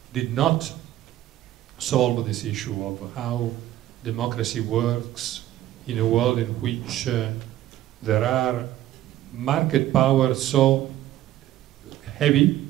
did not solve this issue of how democracy works in a world in which there are market powers so heavy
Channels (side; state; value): left; quieter; 13.5 dB